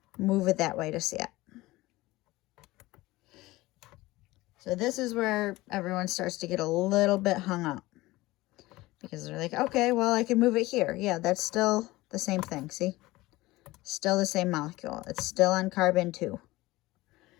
move it that way to see it. So this is where everyone starts to get a little bit hung up. Because they're like, okay, well, I can move it here. Yeah, that's still the same thing, see? Still the same molecule. It's still on carbon 2.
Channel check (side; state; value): right; quieter; 19.2 dB